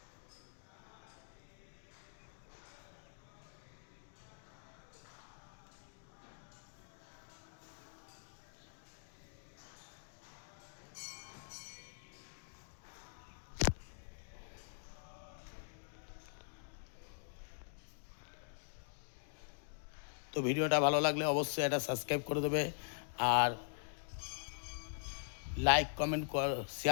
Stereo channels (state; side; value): silent; right; digital silence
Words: তো ভিডিওটা ভালো লাগলে অবশ্যই এটা সাবস্ক্রাইব করে দেবে আর লাইক কমেন্ট